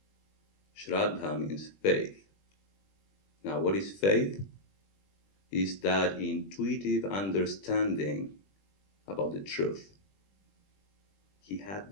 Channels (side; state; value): right; late; 20 ms